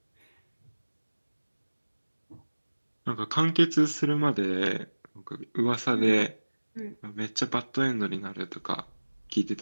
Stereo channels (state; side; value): inverted; both; correlation -1.00